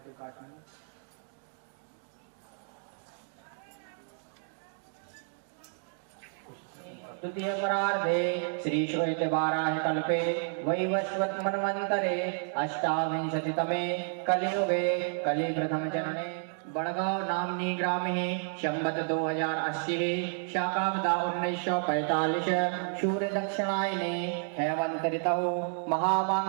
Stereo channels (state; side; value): silent; left; 57 dB below the other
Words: काट में। द्वितीय परार्धे श्री श्वेत वाराह कल्पे वैवस्वत मन्वन्तरे अष्टाविंशतितमे कलियुगे कलि प्रथम जनने बड़गांव नामनी ग्रामे संवत 2080 शाकाब्दा 1945 सूर्य दक्षिणायने हेमंत ऋतौ